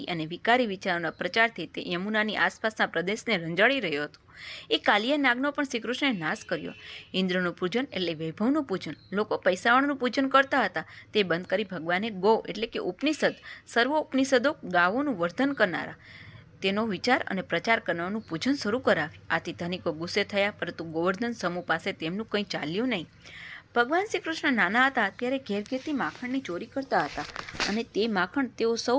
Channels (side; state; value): both; identical; correlation 1.00